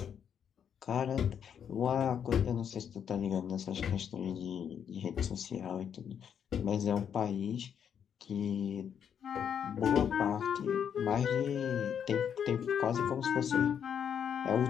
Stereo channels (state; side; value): quieter; right; 8.2 dB